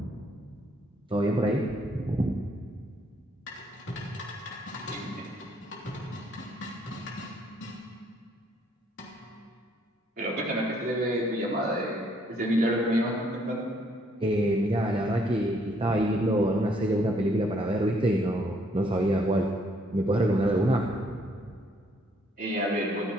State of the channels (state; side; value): normal; both; correlation 0.67